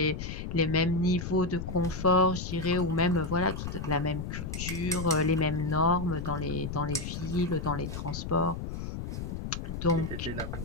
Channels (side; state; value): left; noise; rumble, 6 dB below the sound